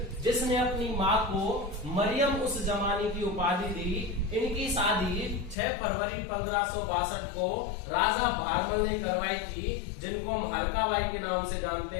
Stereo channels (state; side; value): drops out; right; at 5.6 s